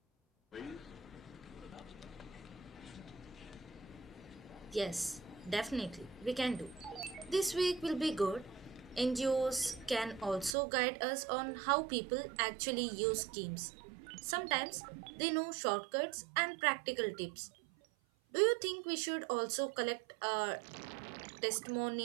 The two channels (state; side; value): drops out; left; at 10.6 s